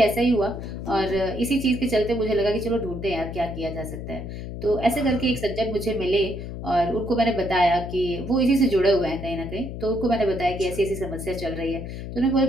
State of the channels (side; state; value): left; noise; hum, 8 dB below the sound